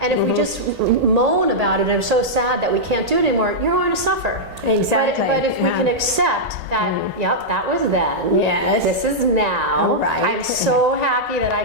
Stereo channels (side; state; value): both; normal; correlation -0.08